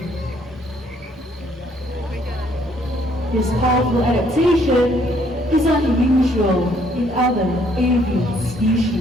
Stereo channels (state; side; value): normal; both; correlation 0.66